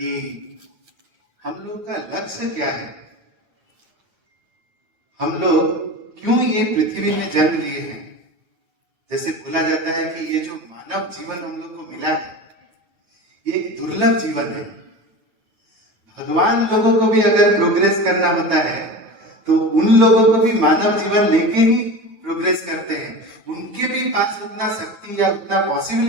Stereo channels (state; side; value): late; left; 9.3 ms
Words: हम लोग का लक्ष्य क्या है, हम लोग क्यों ये पृथ्वी में जन्म लिए हैं। जैसे बोला जाता है कि ये जो मानव जीवन हम लोग को मिला है ये एक दुर्लभ जीवन है। भगवान लोगों को भी अगर प्रोग्रेस करना होता है तो उन लोगों को भी मानव जीवन लेके ही प्रोग्रेस करते हैं। उनके भी पास उतना शक्ति या उतना